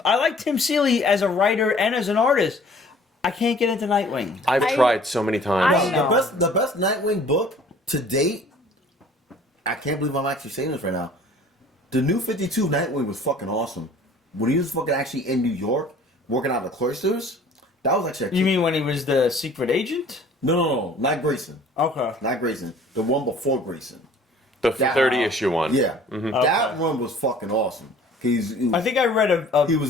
I like Tim Seeley as a writer and as an artist. I can't get into Nightwing. I've tried so many times. The best Nightwing book to date. I can't believe I'm actually saying this right now. The New 52 Nightwing was fucking awesome. When he was fucking actually in New York, working out of the cloisters, that was actually. You mean when he was the secret agent? No, not Grayson. Okay. Not Grayson. The one before Grayson. The 30-issue one. Yeah, Okay. that one was fucking awesome. I think I read a He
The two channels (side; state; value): both; normal; correlation 0.51